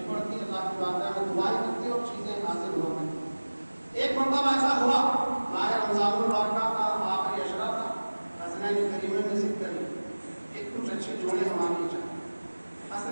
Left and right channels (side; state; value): both; inverted; correlation -1.00